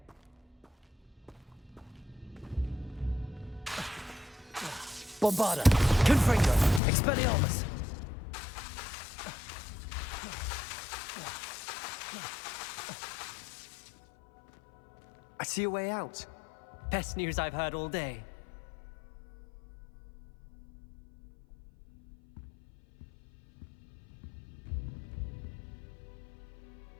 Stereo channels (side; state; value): right; drops out; at 6.8 s